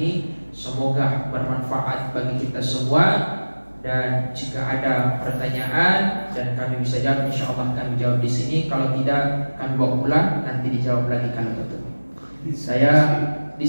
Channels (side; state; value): both; inverted; correlation -1.00